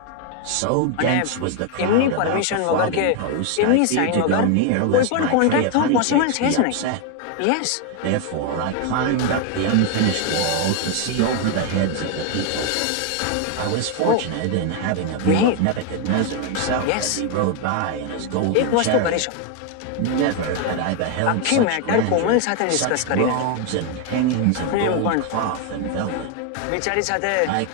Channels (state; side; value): different; both; correlation 0.01